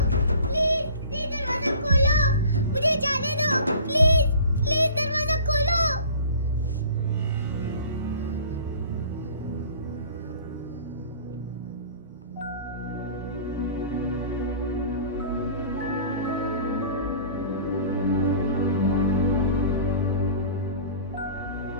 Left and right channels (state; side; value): inverted; both; correlation -0.44